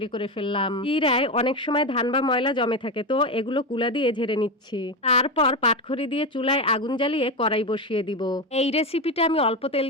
করে ফেললাম। চিড়ায় অনেক সময় ধান বা ময়লা জমে থাকে, তো এগুলো কুলা দিয়ে ঝেড়ে নিচ্ছি। তারপর পাটখড়ি দিয়ে চুলায় আগুন জ্বালিয়ে কড়াই বসিয়ে দিব। এই রেসিপিটা আমি অল্প তেল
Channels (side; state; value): both; normal; correlation 0.15